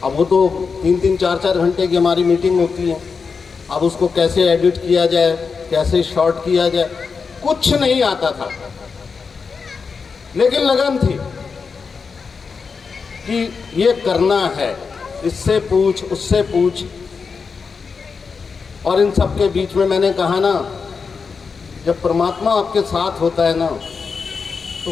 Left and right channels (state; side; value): quieter; right; 5.2 dB